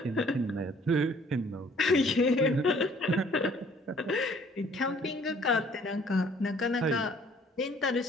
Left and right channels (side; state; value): both; normal; correlation 0.58